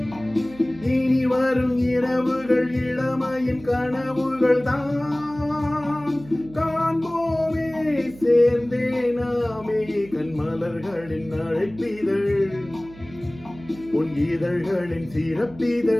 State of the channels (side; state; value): right; noise; hum, 19 dB below the sound